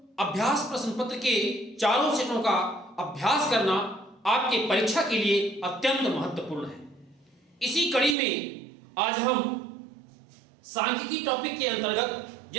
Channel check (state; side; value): drops out; left; at 8.2 s